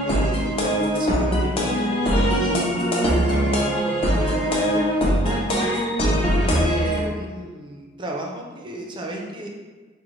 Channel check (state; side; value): normal; both; correlation 0.59